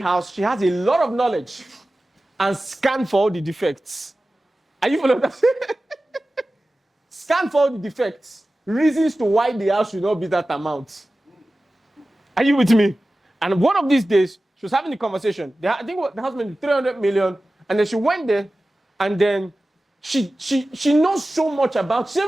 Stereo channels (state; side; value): normal; both; correlation 0.96